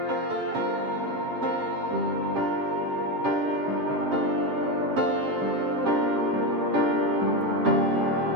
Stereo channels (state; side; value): late; left; 7.6 ms